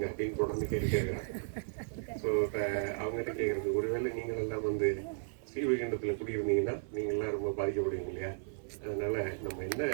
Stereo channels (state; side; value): silent; left; 55 dB below the other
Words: அப்படின்னு தொடர்ந்து கேட்குறாங்க. ஸோ இப்போ அவங்ககிட்ட கேட்குறது, ஒருவேளை நீங்கள் எல்லாம் வந்து ஸ்ரீவைகுண்டத்தில் குடியிருந்தீங்கன்னா நீங்கள்லாம் ரொம்ப பாதிக்கப்படுவீங்க இல்லையா? அதனால நம்ம என்ன